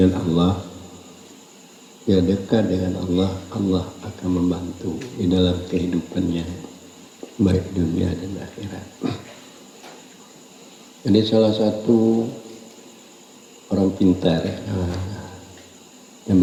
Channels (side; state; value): both; identical; correlation 1.00